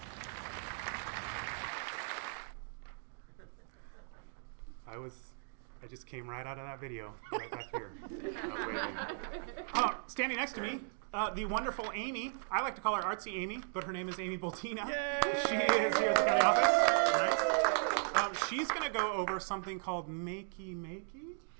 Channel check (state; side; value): silent; left; digital silence